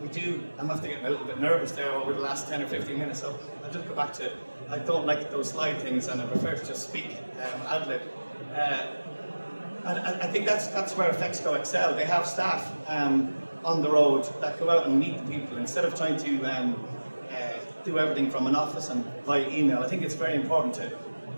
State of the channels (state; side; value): inverted; both; correlation -1.00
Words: do, I'm after getting a little bit nervous there over the last 10 or 15 minutes, so I'll just go back to, I don't like those slide things, and I prefer to just speak ad-lib. And I think that's where FEXCO excel. They have staff on the road that go out and meet the people, instead of trying to do everything from an office and via email. I think it's very important to,